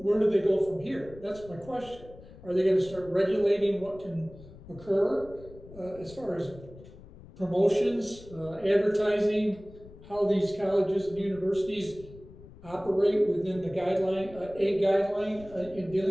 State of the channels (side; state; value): left; noise; rumble, 19 dB below the sound